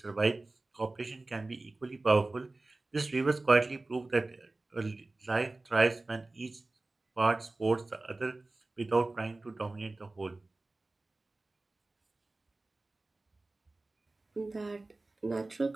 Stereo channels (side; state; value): left; quieter; 3.1 dB